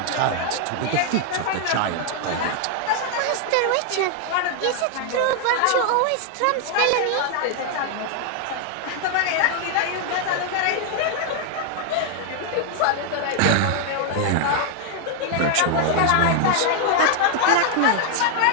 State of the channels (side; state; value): both; different; correlation 0.00